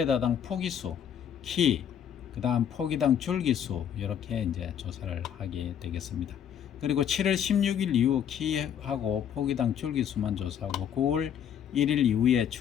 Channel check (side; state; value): right; quieter; 8.9 dB